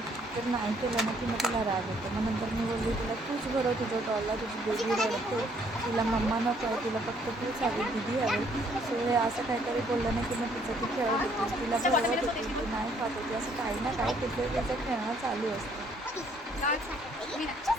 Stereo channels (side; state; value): both; normal; correlation 0.65